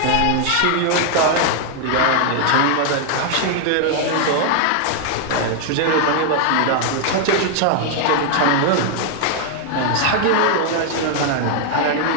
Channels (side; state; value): both; different; correlation 0.00